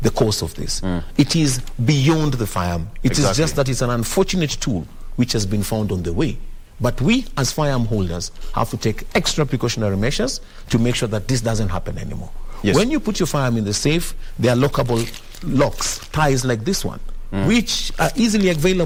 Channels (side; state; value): both; identical; correlation 1.00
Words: the cause of this. It is beyond the firearm. It is just that it's an unfortunate tool which has been found on the way. But we, as firearm holders, have to take extra precautionary measures to make sure that this doesn't happen anymore. Yes. When you put your firearm in the safe, there are lockable locks, ties like this one, which are easily